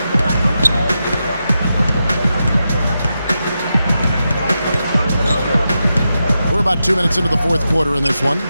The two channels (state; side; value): inverted; both; correlation -0.88